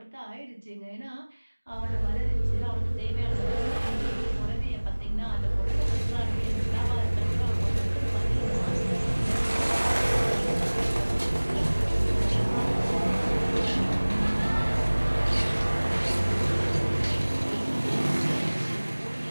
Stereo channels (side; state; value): both; inverted; correlation -1.00